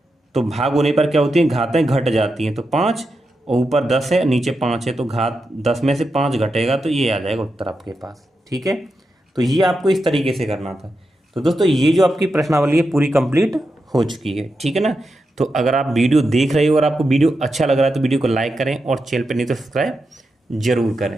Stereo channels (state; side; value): normal; both; correlation 0.87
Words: तो भाग होने पर क्या होती है, घातें घट जाती हैं, तो 5 और ऊपर 10 है नीचे 5 है तो घात 10 में से 5 घटेगा, तो ये आ जाएगा उत्तर आपके पास, ठीक है। तो ये आपको इस तरीके से करना था। तो दोस्तों ये जो आपकी प्रश्नावली है पूरी कंप्लीट हो चुकी है, ठीक है ना। तो अगर आप वीडियो देख रहे हो और आपको वीडियो अच्छा लग रहा है तो वीडियो को लाइक करें और चैनल पर नहीं तो सब्सक्राइब जरूर